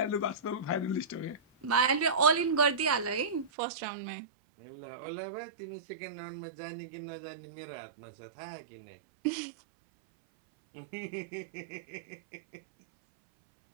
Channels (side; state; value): left; drops out; at 3.5 s